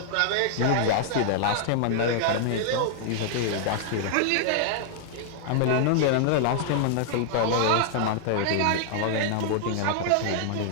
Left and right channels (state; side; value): different; both; correlation 0.00